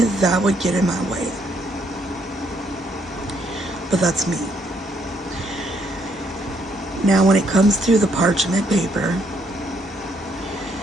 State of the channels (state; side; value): normal; both; correlation 0.71